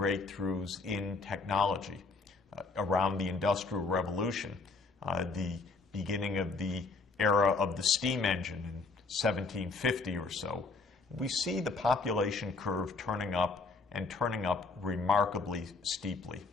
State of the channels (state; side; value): quieter; right; 3.9 dB